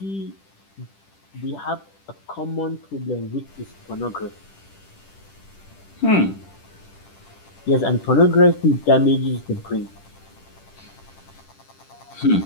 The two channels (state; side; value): late; right; 10 ms